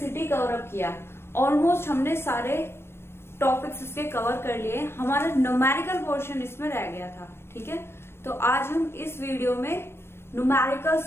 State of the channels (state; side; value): late; right; 0.12 ms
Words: कवर अप किया। ऑलमोस्ट हमने सारे टॉपिक्स इसके कवर कर लिए। हमारा न्यूमेरिकल पोर्शन इसमें रह गया था। ठीक है, तो आज हम इस वीडियो में न्यूमेरिकल